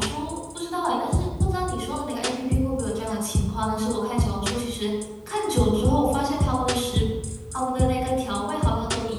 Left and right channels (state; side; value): identical; both; correlation 1.00